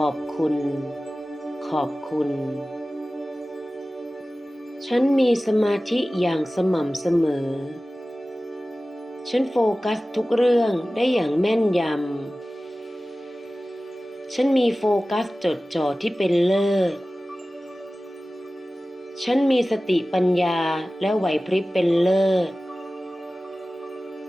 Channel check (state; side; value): normal; both; correlation 0.96